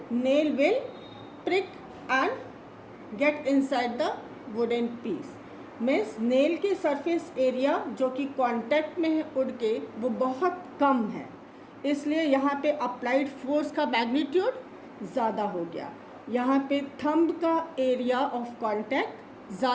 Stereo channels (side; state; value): both; identical; correlation 1.00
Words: nail will prick and get inside the wooden piece. Means nail की सरफेस एरिया जो कि कांटेक्ट में है वुड के, वो बहुत कम है, इसलिए यहाँ पे अप्लाइड फोर्स का मैग्नीट्यूड ज़्यादा हो गया. यहाँ पे थंब का एरिया ऑफ कांटेक्ट